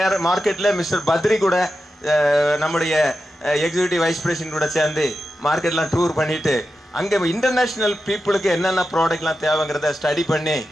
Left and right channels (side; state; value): both; normal; correlation 0.90